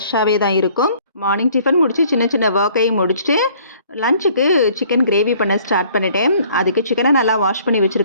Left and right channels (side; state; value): both; inverted; correlation -0.57